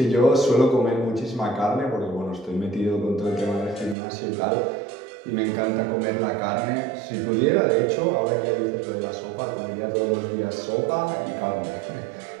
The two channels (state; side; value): drops out; left; at 4.0 s